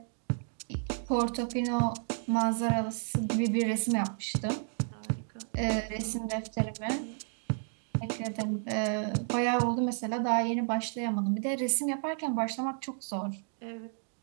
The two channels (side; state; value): left; silent; 57 dB below the other